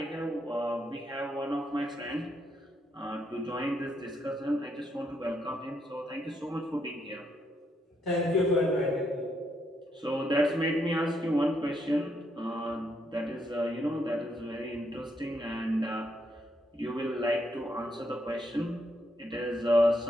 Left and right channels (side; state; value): both; normal; correlation 0.77